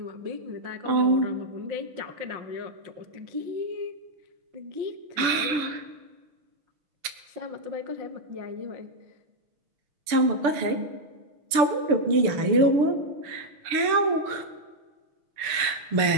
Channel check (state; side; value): late; left; 6.8 ms